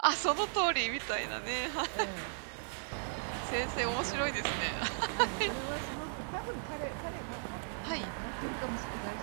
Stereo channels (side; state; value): left; silent; digital silence